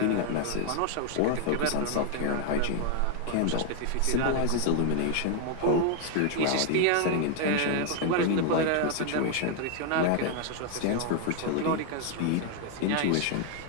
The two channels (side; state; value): both; different; correlation 0.00